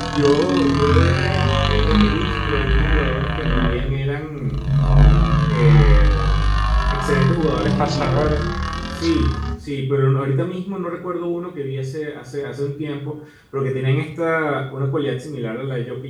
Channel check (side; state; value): both; identical; correlation 1.00